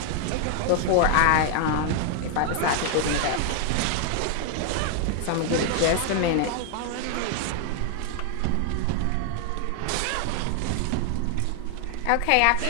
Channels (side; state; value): both; different; correlation 0.00